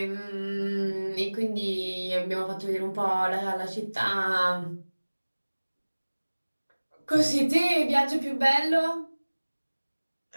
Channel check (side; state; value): both; inverted; correlation -1.00